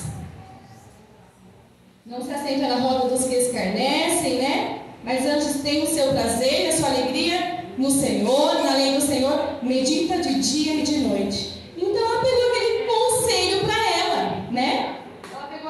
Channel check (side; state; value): both; identical; correlation 1.00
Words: Não se assenta na roda dos que escarnecem, né? Mas antes tem o seu prazer, a sua alegria no Senhor, na lei do Senhor, medita de dia e de noite. Então ela pegou aquele conselho para ela, né? Ela